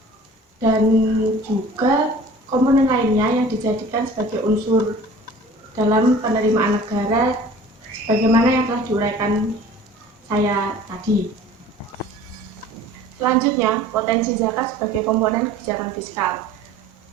dan juga komponen lainnya yang dijadikan sebagai unsur dalam penerimaan negara sebagaimana yang telah diuraikan saya tadi. Selanjutnya, potensi zakat sebagai komponen kebijakan fiskal.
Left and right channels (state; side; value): normal; both; correlation 0.46